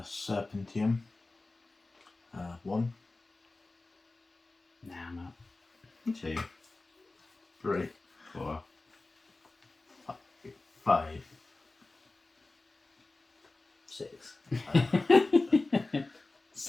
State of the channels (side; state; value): right; quieter; 3.2 dB